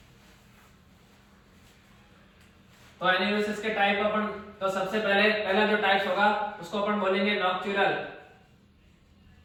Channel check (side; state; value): both; identical; correlation 1.00